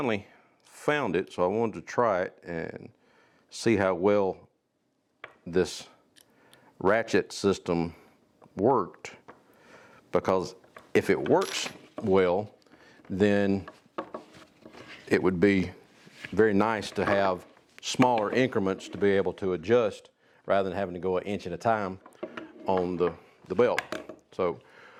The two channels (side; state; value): both; identical; correlation 1.00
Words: found it, so I wanted to try it and see how well this ratchet system worked, because if it works well, then it would be very nice to have smaller increments to be able to adjust rather than having to go an inch at a time on the belt. So